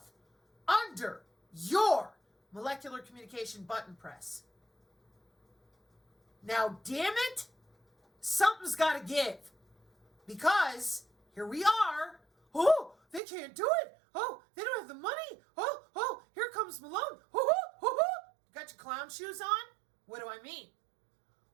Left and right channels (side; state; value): left; drops out; at 13.2 s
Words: under your molecular communication button press. Now, damn it, something's got to give. Because here we are. Oh, they can't do it. Oh, they don't have the money. Oh, here comes Malone. Got your clown shoes on? What do I mean?